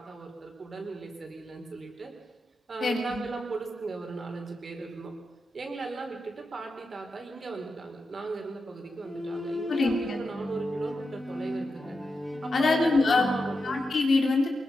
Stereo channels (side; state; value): both; normal; correlation 0.88